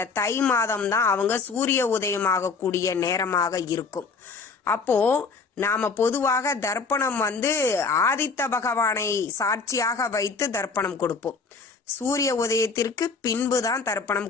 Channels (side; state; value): right; quieter; 4.7 dB